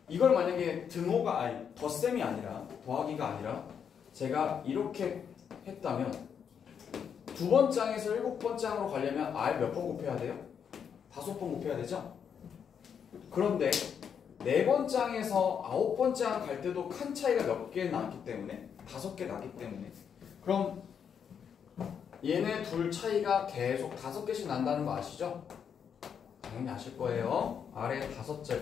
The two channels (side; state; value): right; quieter; 7.5 dB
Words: 이걸 만약에 등호가 아니 덧셈이 아니라 더하기가 아니라 제가 이렇게 했다면 두 번 장에서 일곱 번 장으로 가려면 R 몇 번 곱해야 돼요? 5번 곱해야 되죠? 그런데 4번 장에서 9번 장 갈 때도 칸 차이가 몇 개 나기 때문에 5개 나기 때문에 그럼 얘네 둘 차이가 계속 5개씩 난다는 거 아시죠? 당연히 아실 거예요. 아래